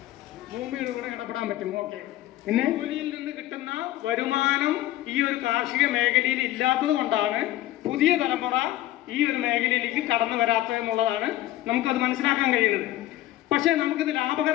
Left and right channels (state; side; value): quieter; right; 15.0 dB